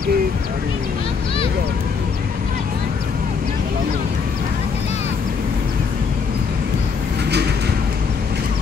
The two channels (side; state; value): right; quieter; 5.5 dB